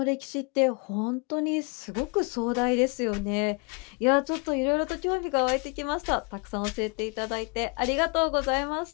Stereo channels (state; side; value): quieter; right; 32.7 dB